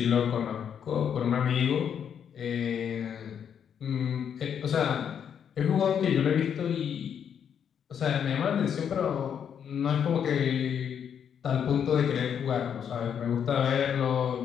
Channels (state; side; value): quieter; right; 8.2 dB